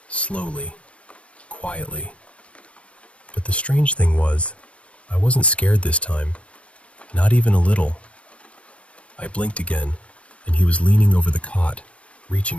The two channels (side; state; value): right; late; 0.062 ms